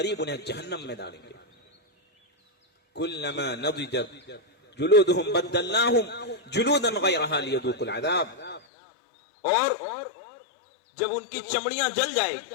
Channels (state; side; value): drops out; right; at 8.6 s